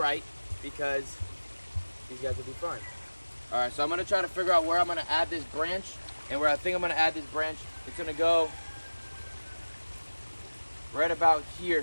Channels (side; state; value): both; inverted; correlation -1.00